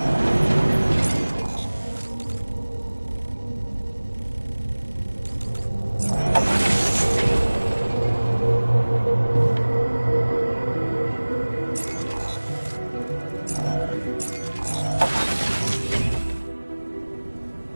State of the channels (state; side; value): inverted; both; correlation -1.00